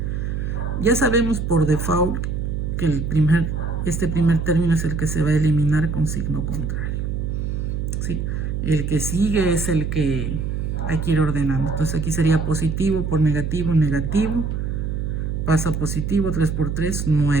Ya sabemos por default que este primer término es el que se va a eliminar con signo contrario. ¿Sí? El que sigue es el que hay que ir ordenando. Entonces aquí sería positivo por negativo, negativo. Pasa positivo, 3 por 3,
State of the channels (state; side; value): noise; right; hum, 2 dB below the sound